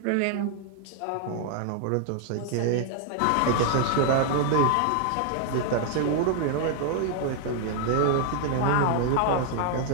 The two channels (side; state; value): both; different; correlation 0.00